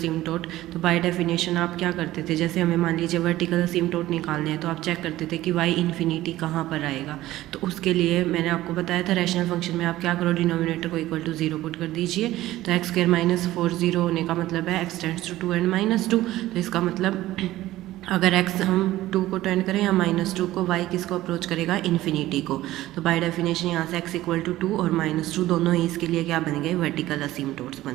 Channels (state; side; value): quieter; left; 15.7 dB